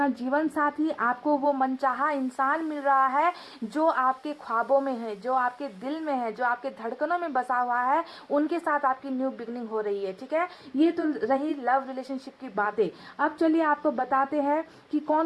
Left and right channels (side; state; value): both; identical; correlation 1.00